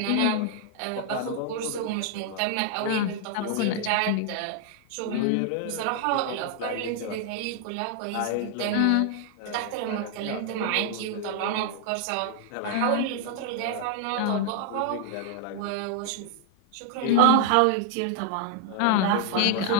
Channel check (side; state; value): both; different; correlation 0.00